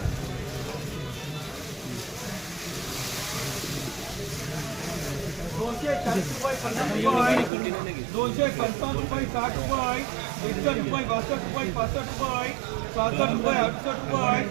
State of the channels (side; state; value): left; drops out; at 7.5 s